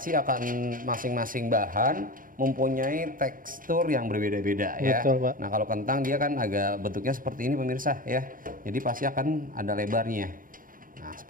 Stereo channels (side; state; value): left; late; 0.40 ms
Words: akan masing-masing bahan mempunyai tekstur yang berbeda-beda ya. Betul, Pak. Nah kalau kentang dia kan agak bentuknya seperti ini pemirsa ya. Jadi pasti akan ada lebarnya. Nah